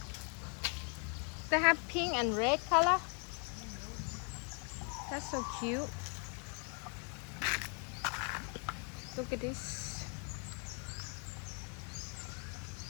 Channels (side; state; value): right; quieter; 39.3 dB